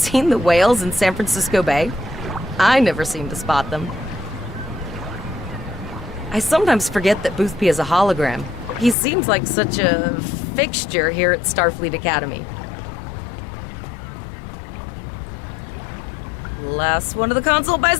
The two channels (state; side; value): drops out; right; at 9.0 s